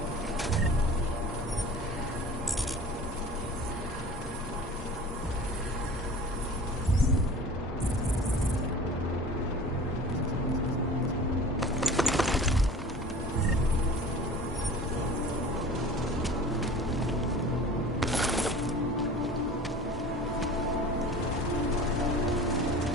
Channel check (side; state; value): both; normal; correlation 0.40